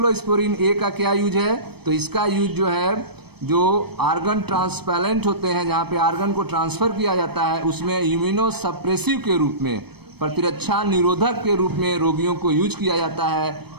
ए का क्या यूज है? तो इसका यूज जो है जो आर्गन ट्रांसप्लांट होते हैं, जहाँ पे आर्गन को ट्रांसफर किया जाता है, उसमें इम्यूनो सप्रेसिव के रूप में, प्रतिरक्षा निरोधक के रूप में रोगियों को यूज किया जाता है।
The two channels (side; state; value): left; late; 0.97 ms